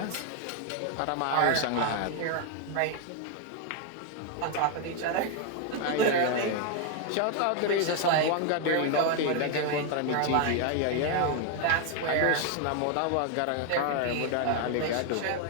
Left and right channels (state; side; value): different; both; correlation 0.00